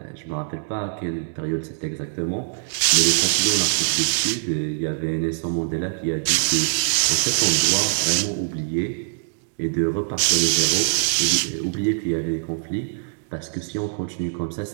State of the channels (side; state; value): left; silent; digital silence